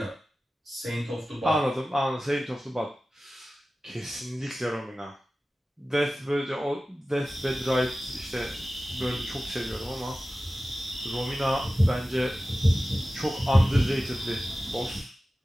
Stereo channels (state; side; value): normal; both; correlation 0.95